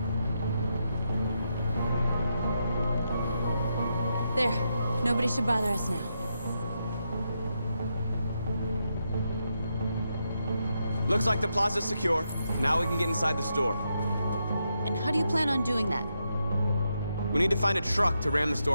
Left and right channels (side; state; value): both; inverted; correlation -0.83